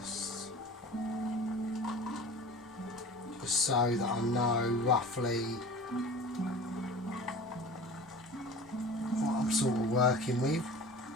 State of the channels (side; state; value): both; normal; correlation 0.39